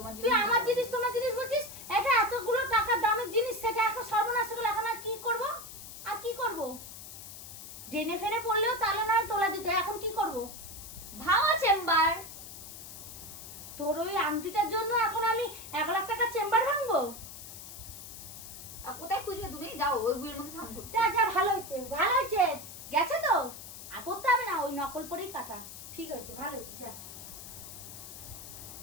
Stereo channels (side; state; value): left; noise; hiss, 12 dB below the sound